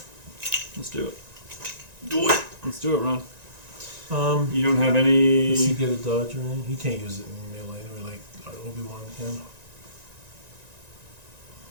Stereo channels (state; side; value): late; left; 1.9 ms